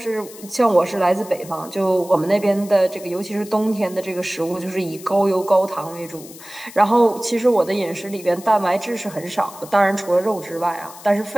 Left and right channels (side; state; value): left; noise; hiss, 18 dB below the sound